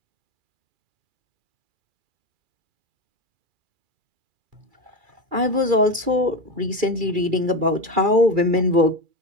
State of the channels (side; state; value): left; late; 2.3 ms